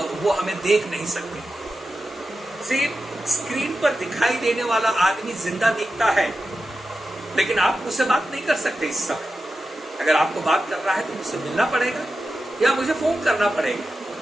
वो हमें देख नहीं सकती। सिर्फ स्क्रीन पर दिखाई देने वाला आदमी जिंदा दिखता है, लेकिन आप मुझसे बात नहीं कर सकते इस समय। अगर आपको बात कर रहा है तो मुझसे मिलना पड़ेगा, या मुझे फोन करना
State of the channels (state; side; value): normal; both; correlation 0.91